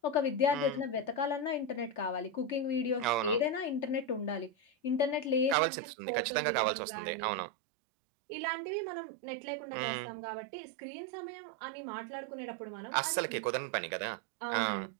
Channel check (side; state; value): left; drops out; at 5.6 s